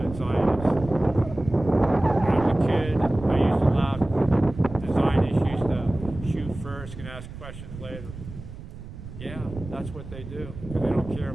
the Zionists. When I was a kid, I used to laugh. The Zionists used to shoot first and ask questions later. Yeah, that's what they do, because they don't care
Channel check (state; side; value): noise; right; rumble, 12 dB below the sound